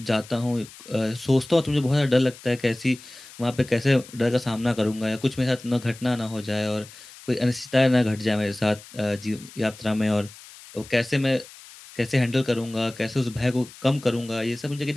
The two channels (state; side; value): noise; left; hiss, 19 dB below the sound